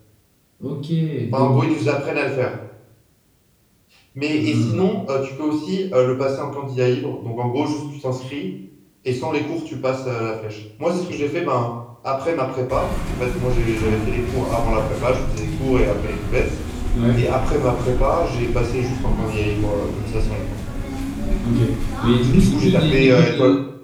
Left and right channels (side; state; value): both; identical; correlation 1.00